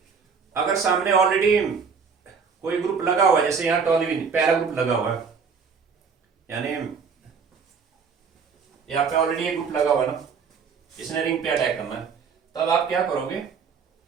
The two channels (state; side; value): quieter; left; 5.8 dB